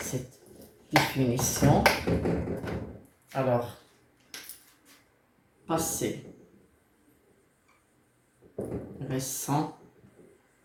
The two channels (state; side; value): identical; both; correlation 1.00